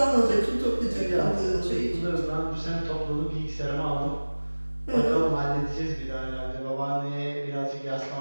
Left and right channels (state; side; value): inverted; both; correlation -1.00